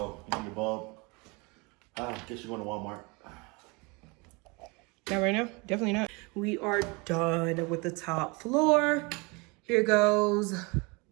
you need your bulb. Guess you're going to Walmart. Not right now, definitely not. We are done with the top floor. Here goes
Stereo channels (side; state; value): left; quieter; 28.1 dB